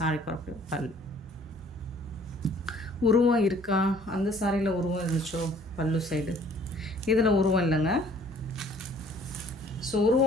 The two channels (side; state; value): both; normal; correlation 0.56